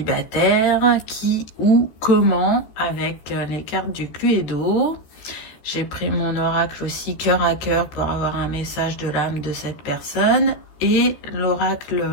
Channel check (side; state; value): right; late; 13 ms